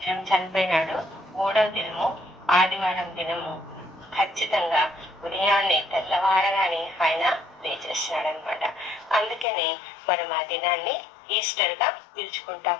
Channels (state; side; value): drops out; right; at 9.5 s